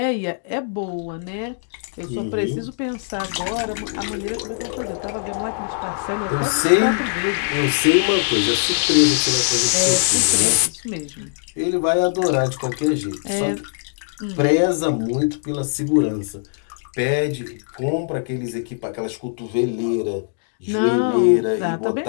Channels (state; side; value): silent; right; digital silence